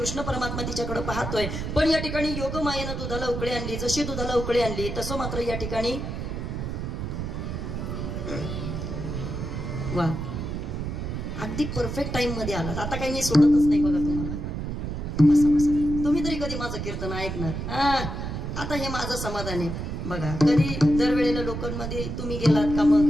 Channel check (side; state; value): right; noise; rumble, 4 dB below the sound